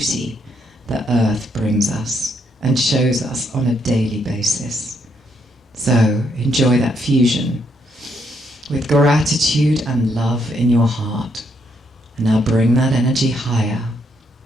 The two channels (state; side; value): normal; both; correlation 0.75